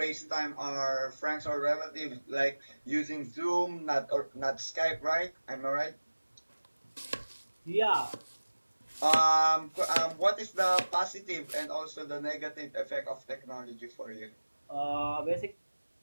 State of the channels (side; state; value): both; inverted; correlation -1.00